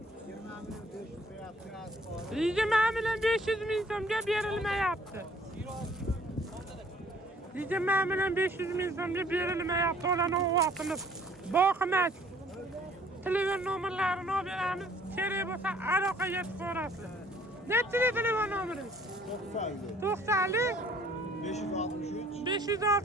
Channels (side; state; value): both; normal; correlation 0.58